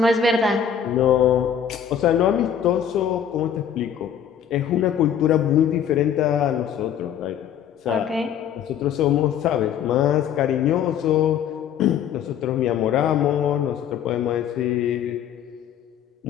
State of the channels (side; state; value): right; quieter; 8.7 dB